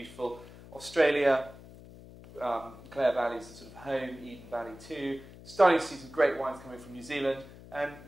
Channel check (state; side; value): noise; left; hum, 18 dB below the sound